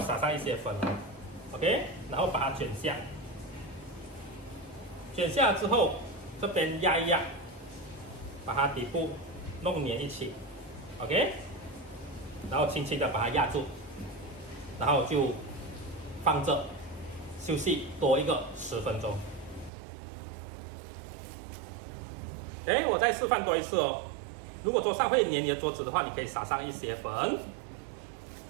撒上一些粉 ，OK， 然后把它卷下，卷下之后这边压一压，把它底部弄粘一起 ，OK， 然后轻轻的把它压住，然后就放着休息多一个10分钟。我再示范多一次哦。如果桌上会粘你的桌子的话，你可以撒上一些粉，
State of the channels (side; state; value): left; drops out; at 19.7 s